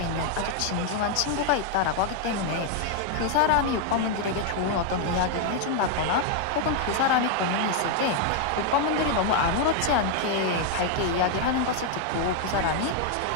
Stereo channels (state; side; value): different; both; correlation 0.00